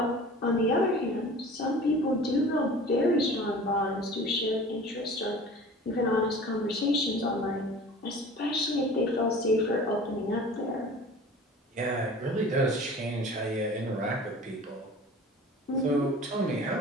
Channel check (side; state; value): both; normal; correlation 0.42